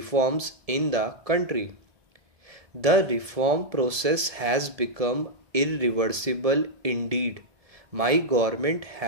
in the country. The reform process has become irreversible indeed. My government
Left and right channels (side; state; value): left; late; 1.7 ms